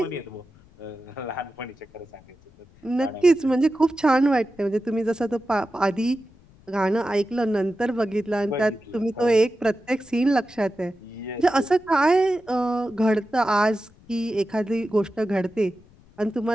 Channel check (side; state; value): left; noise; rumble, 27 dB below the sound